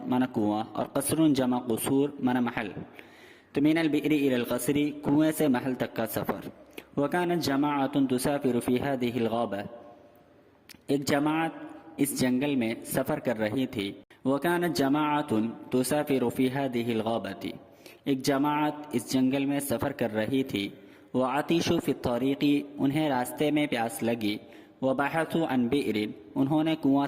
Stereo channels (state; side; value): identical; both; correlation 1.00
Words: من کنواں اور قصر جمع قصور من محل۔ تو من البئر الی القصر، کنویں سے محل تک کا سفر۔ وکانت جماعۃ تسافر فی هذه الغابہ، ایک جماعت اس جنگل میں سفر کر رہی تھی۔ وَكَانَتْ جَمَاعَةٌ تُسَافِرُ فِي هَذِهِ الْغَابَةِ، ایک جماعت اس جنگل میں سفر کر رہی تھی۔ وَعَطِشُوا فِي الطَّرِيقِ، انہیں راستے میں پیاس لگی۔ وَبَحَثُوا عَنْ بِئْرٍ، انہوں نے کنواں